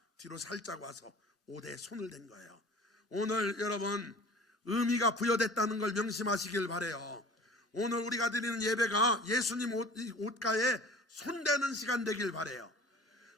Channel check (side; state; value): both; normal; correlation 0.43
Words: 뒤로 살짝 와서 옷에 손을 댄 거예요. 오늘 여러분 의미가 부여됐다는 걸 명심하시길 바라요. 오늘 우리가 드리는 예배가 예수님 옷가에 손대는 시간 되길 바라요.